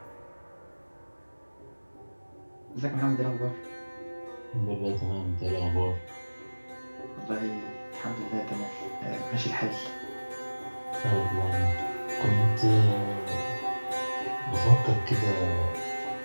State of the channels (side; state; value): both; inverted; correlation -1.00